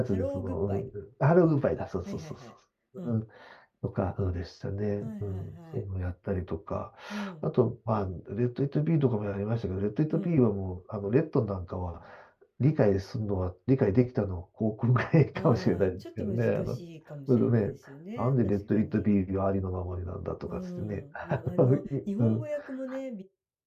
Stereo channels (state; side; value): identical; both; correlation 1.00